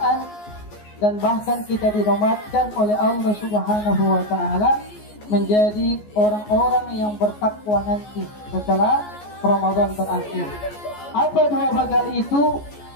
dan bahkan kita dinobatkan oleh Allah Subhanahu wa Ta'ala menjadi orang-orang yang bertakwa nanti setelah Ramadan berakhir. Apa dua bekal itu,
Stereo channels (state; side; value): late; right; 14 ms